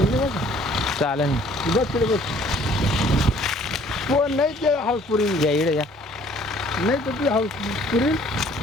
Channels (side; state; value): both; normal; correlation 0.57